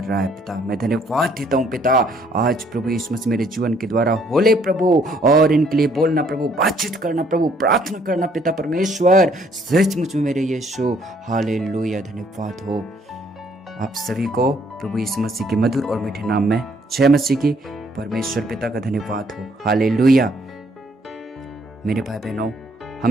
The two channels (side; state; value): both; normal; correlation 0.65